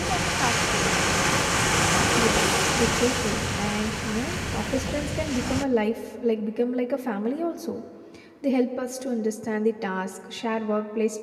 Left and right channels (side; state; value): both; identical; correlation 1.00